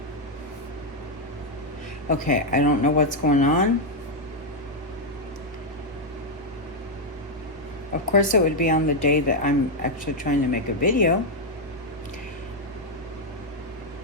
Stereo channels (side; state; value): both; normal; correlation 0.00